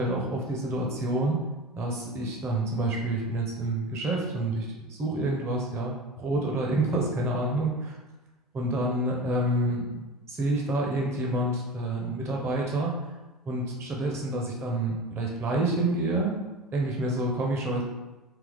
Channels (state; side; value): normal; both; correlation 0.32